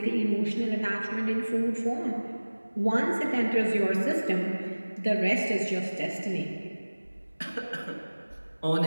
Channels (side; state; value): both; inverted; correlation -1.00